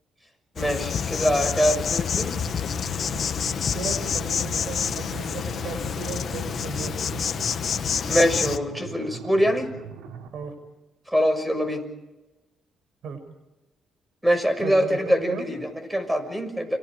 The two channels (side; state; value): both; normal; correlation 0.85